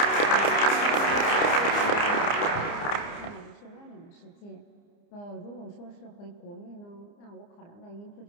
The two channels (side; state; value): right; late; 29 ms